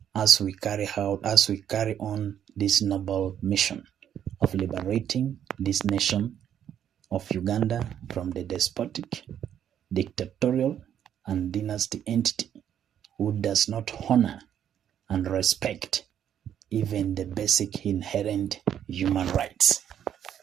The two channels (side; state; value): left; quieter; 9.7 dB